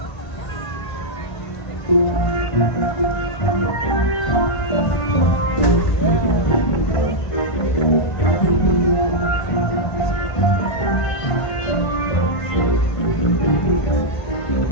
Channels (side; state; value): right; late; 1.5 ms